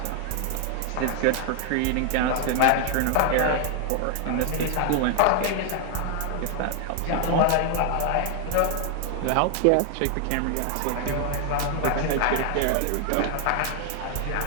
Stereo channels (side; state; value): both; different; correlation 0.00